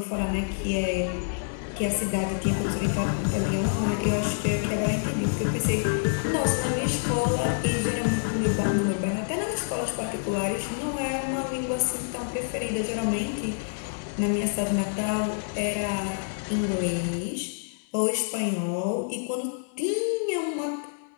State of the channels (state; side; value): silent; right; 60 dB below the other